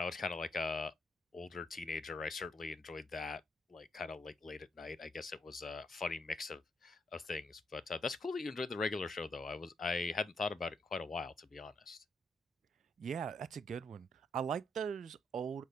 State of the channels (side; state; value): both; normal; correlation 0.76